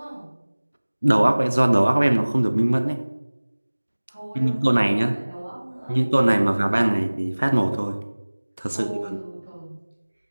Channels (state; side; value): inverted; both; correlation -1.00